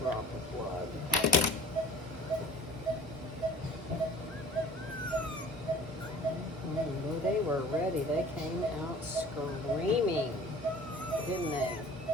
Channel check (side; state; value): both; normal; correlation 0.47